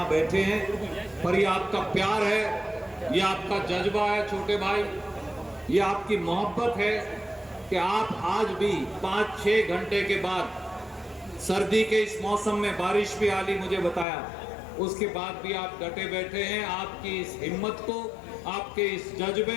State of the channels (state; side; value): drops out; right; at 14.1 s